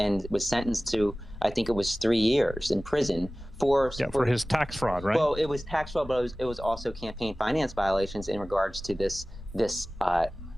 was sentenced to, I think it was 3 years in prison for his tax fraud, right? Well, it was tax fraud, but it was also campaign finance violations in regards to this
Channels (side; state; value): both; normal; correlation 0.97